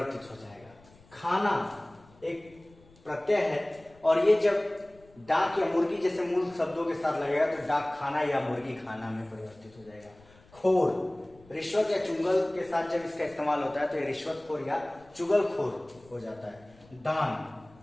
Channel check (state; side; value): noise; left; rumble, 26 dB below the sound